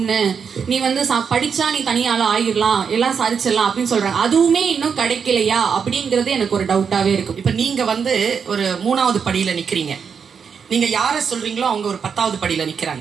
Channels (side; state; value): left; quieter; 6.5 dB